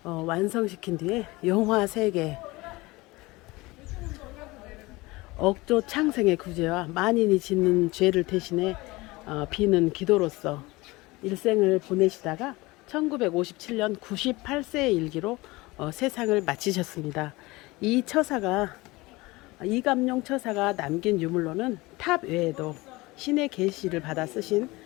완성시킨 뒤에 용화 3개, 억조 창생의 구제와 만인이 짓는 죄를 대신해 비는 기도로서 일생을 보내시다가 1957년 98세의 일기로 세상을 마치셨습니다. 이 처사가 이감룡 처사가 남긴 유물로는 탑 외에도 신의 계시를 받아 쓰신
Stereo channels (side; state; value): right; quieter; 21.8 dB